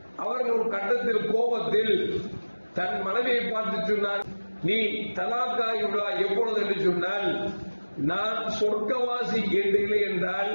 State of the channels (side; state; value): both; inverted; correlation -1.00